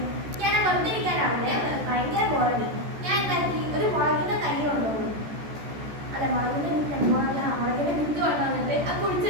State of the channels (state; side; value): late; left; 14 ms